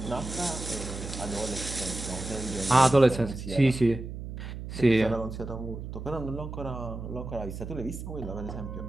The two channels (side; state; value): right; noise; hum, 8 dB below the sound